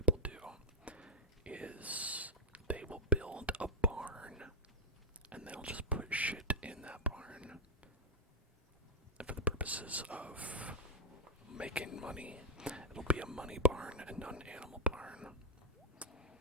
do is they will build a barn and they'll just put shit in that barn for the purposes of making money. It'll be a money barn and not an animal barn.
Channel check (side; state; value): both; normal; correlation 0.00